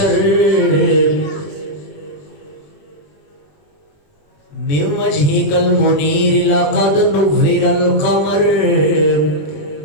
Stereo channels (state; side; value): late; right; 21 ms